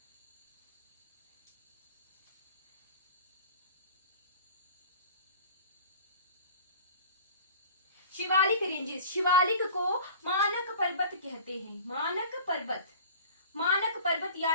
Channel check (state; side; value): inverted; both; correlation -0.42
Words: Shivalik ranges, Shivalik को मानक पर्वत कहते हैं। मानक पर्वत, मानक पर्वत